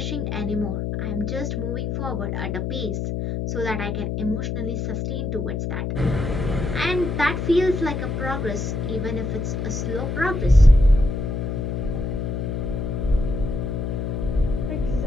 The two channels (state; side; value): noise; left; hum, 2 dB below the sound